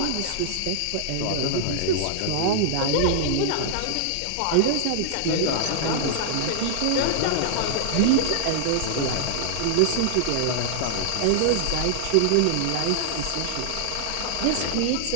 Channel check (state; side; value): different; both; correlation -0.01